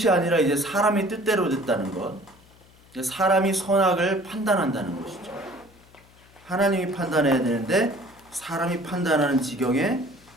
아니라 이제 사람의 뜻대로 됐다는 것. 사람이 선악을 판단한다는 것이죠. 하나님이 판단해야 되는데 사람이 판단하는 지경에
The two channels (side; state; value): left; noise; hum, 27 dB below the sound